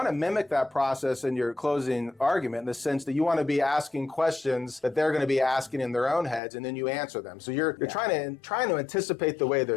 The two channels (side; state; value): right; drops out; at 6.4 s